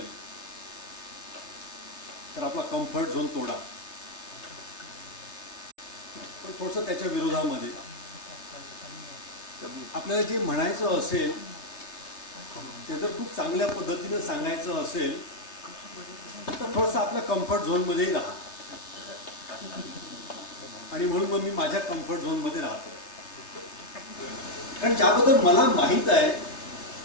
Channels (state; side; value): late; right; 3.3 ms